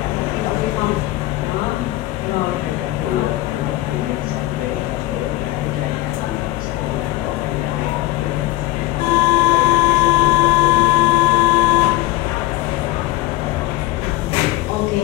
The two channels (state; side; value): quieter; right; 17.5 dB